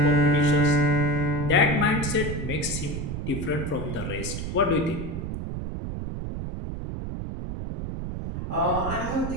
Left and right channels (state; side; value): noise; right; rumble, 5 dB below the sound